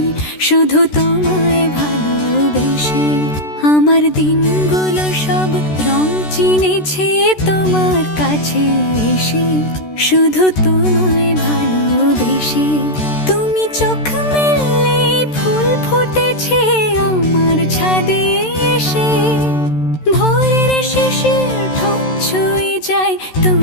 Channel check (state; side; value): late; right; 13 ms